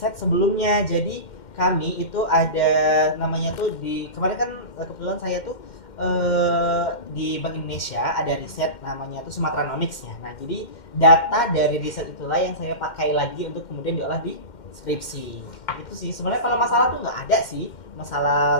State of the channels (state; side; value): late; right; 2.1 ms